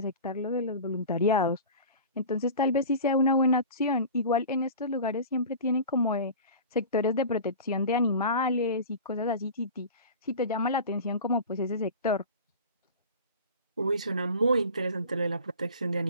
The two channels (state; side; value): inverted; both; correlation -0.36